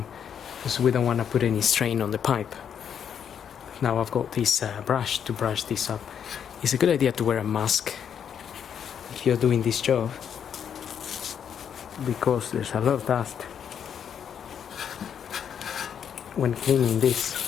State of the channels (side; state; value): right; quieter; 8.2 dB